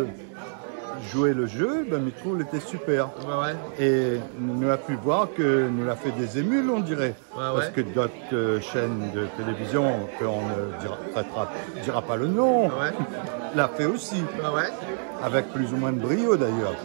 jouer le jeu, ben, je trouve qu'il était super. Ouais. Et nous avons pu voir que nous avons fait des émules, on dirait. Parce que d'autres chaînes de télévision, qu'on ne dira pas le nom, l'a fait aussi. Avec plus ou moins de brio d'ailleurs.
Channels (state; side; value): silent; left; digital silence